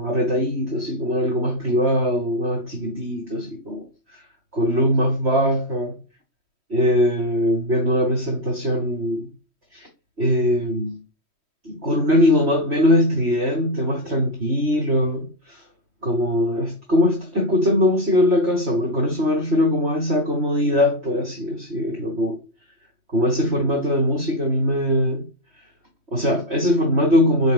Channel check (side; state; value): left; late; 3.1 ms